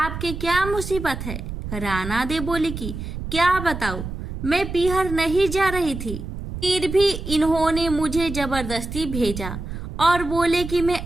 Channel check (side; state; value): right; noise; rumble, 7 dB below the sound